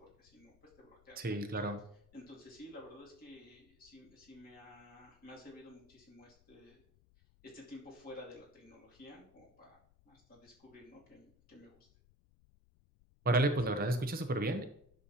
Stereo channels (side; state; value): left; noise; rumble, 28 dB below the sound